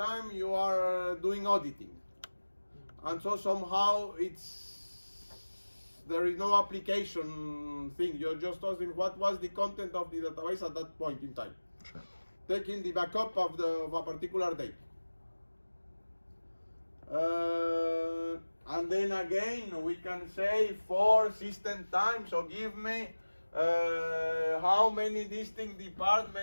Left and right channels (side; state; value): both; inverted; correlation -1.00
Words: you are doing auditing. And so somehow there is no application thing. You're just asking what was the content of the database at that point in time. Sure. Taking the backup of a particular date. And then again, we can say for system time, so give me how many distinct